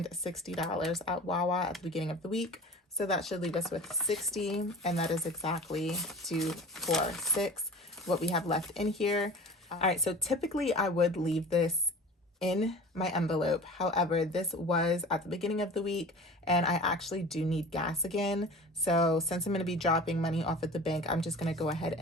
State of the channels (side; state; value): both; normal; correlation 0.39